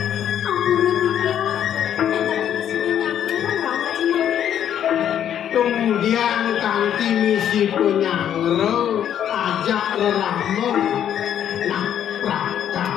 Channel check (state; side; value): quieter; right; 9.9 dB